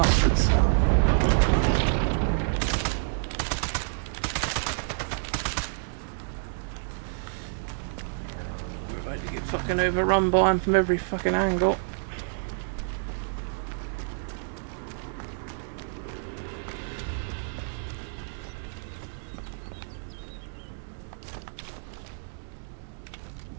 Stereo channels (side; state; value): left; silent; digital silence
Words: We're about to get fucking overrun by him from every fucking angle.